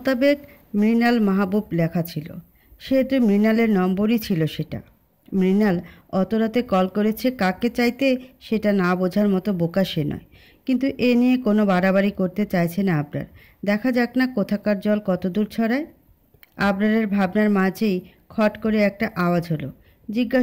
মৃণাল মাহবুব লেখা ছিল, সেহেতু মৃণালের নম্বরই ছিল সেটা। মৃণাল অত রাতে কল করেছে কাকে চাইতে সেটা না বোঝার মতো বোকা সে নয়। কিন্তু এ নিয়ে কোনো বাড়াবাড়ি করতে চাইছে না আবরার। দেখা যাক না কোথাকার জল কত দূর ছড়ায়। আবরারের ভাবনার মাঝেই খট করে একটা আওয়াজ হলো।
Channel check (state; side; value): identical; both; correlation 1.00